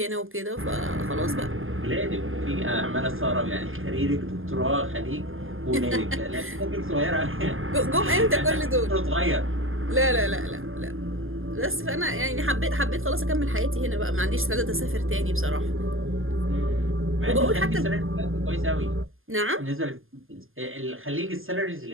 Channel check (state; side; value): late; left; 0.59 ms